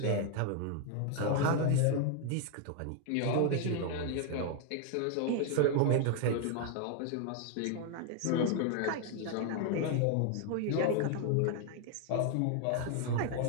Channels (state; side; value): different; both; correlation 0.00